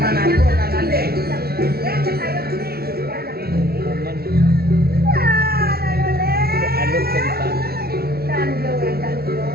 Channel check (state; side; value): late; left; 0.45 ms